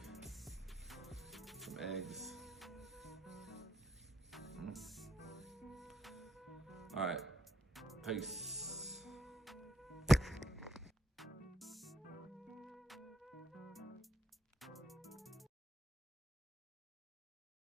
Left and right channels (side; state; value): both; normal; correlation 0.74